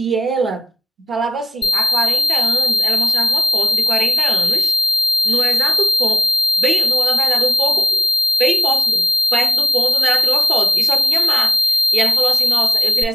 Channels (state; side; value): normal; both; correlation 0.87